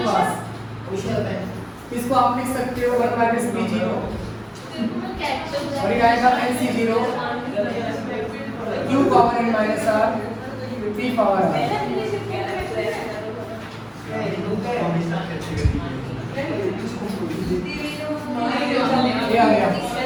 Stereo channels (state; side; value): identical; both; correlation 1.00